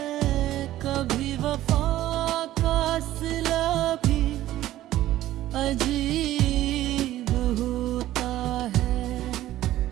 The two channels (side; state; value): left; quieter; 14.3 dB